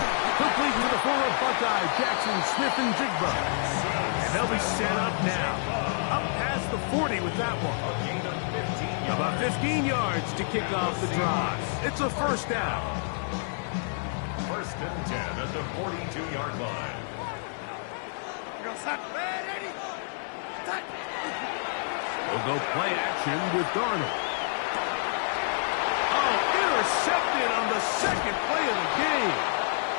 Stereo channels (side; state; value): right; silent; 59 dB below the other